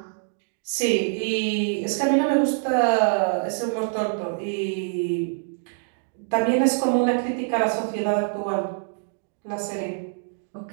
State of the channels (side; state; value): left; silent; digital silence